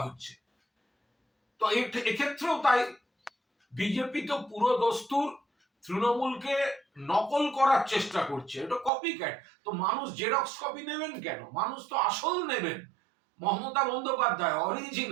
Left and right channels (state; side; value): drops out; left; at 8.9 s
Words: হচ্ছে। তো এক্ষেত্রেও তাই, বিজেপি তো পুরো দস্তুর তৃণমূলকে নকল করার চেষ্টা করছে। এটা কপি ক্যাট। তো মানুষ জেরক্স কপি নেবেন কেন? মানুষ তো আসল নেবেন। Mamata Bandyopadhyay